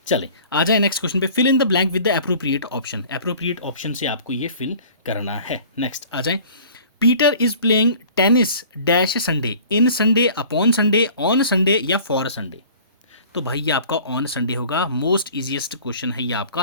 चले आ जाए नेक्स्ट क्वेश्चन पे। Fill in the blank with the appropriate option, appropriate option से आपको ये फिल करना है। नेक्स्ट आ जाए, Peter is playing tennis dash Sunday, in Sunday, upon Sunday, on Sunday या फॉर संडे। तो भाई ये आपका ऑन संडे होगा, मोस्ट इजीएस्ट क्वेश्चन है ये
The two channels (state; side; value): inverted; both; correlation -0.47